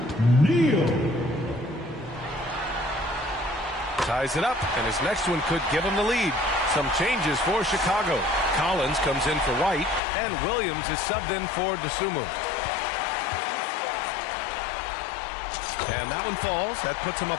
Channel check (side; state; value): right; drops out; at 10.0 s